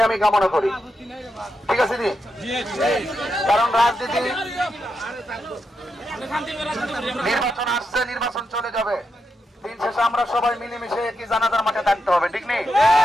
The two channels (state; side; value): normal; both; correlation 0.85